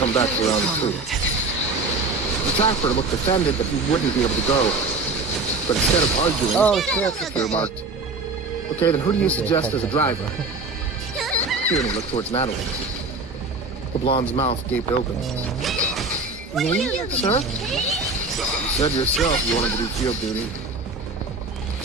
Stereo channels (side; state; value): left; quieter; 3.6 dB